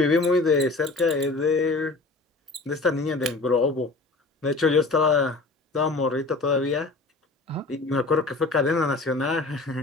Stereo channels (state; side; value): quieter; right; 3.4 dB